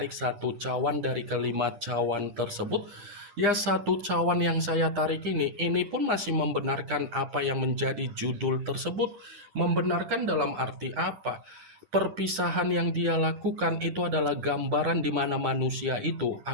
satu cawan dari kelima cawan tersebut, ya satu cawan yang saya tarik ini pun masih membenarkan apa yang menjadi judul tersebut. Membenarkan dalam arti apa? Perpisahan yang dia lakukan itu adalah gambaran di mana manusia itu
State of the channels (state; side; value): late; left; 9.9 ms